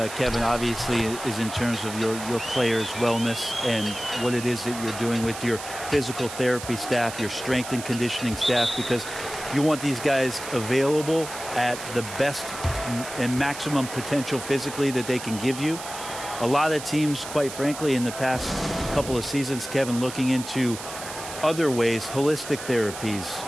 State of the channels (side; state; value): right; noise; hiss, 11 dB below the sound